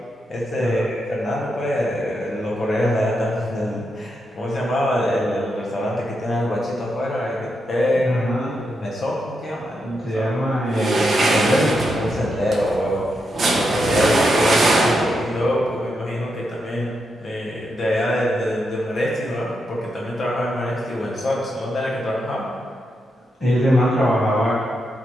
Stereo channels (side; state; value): both; normal; correlation 0.84